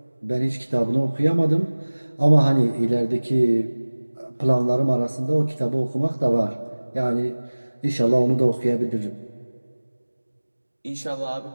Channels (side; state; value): both; inverted; correlation -1.00